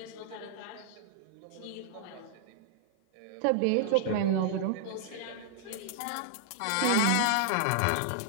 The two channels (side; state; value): both; different; correlation -0.01